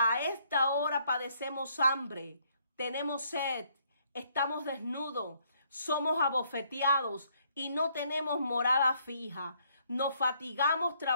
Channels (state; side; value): inverted; both; correlation -0.68